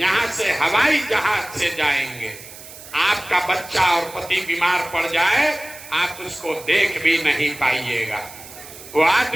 से हवाई जहाज से जाएंगे, आपका बच्चा और पति बीमार पड़ जाए, आप उसको देख भी नहीं पाइएगा। वो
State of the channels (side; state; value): right; noise; hiss, 16 dB below the sound